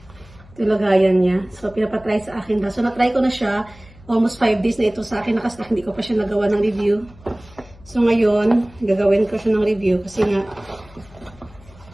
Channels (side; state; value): left; noise; hum, 24 dB below the sound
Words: yung lagayan niya. So, pinapatry sa akin. So, na-try ko na siya. Almost 5 days na ito sa akin. Nakastack, hindi ko pa siya nagawa ng review. So, ngayon, gagawin ko siya ng review kasi nga,